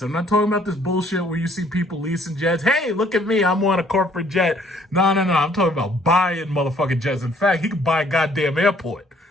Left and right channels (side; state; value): both; normal; correlation 0.62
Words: I'm not talking about this bullshit where you see people leasing jets. Hey, look at me. I'm on a corporate jet. No. I'm talking about buying motherfucking jets. In fact, he could buy a goddamn airport.